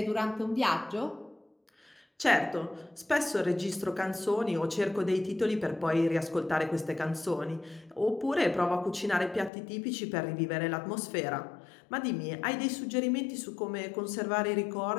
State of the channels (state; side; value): drops out; right; at 9.5 s